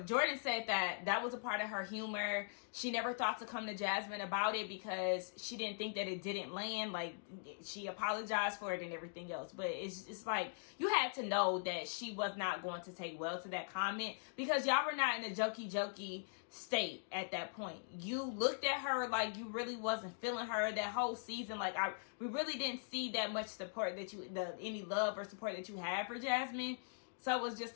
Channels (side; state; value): right; silent; digital silence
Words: Jordan said that that was a part of her humor. She never thought to come to Jasmine about it because she didn't think that it didn't land. Like, she apologized for it and everything else. But it's like, you had to know that she was not going to take well to that comment because y'all were not in a jokey state at that point. You looked at her like you really wasn't feeling her that whole season. Like, we really didn't see that much support that any love or support that you had for Jasmine. So it was just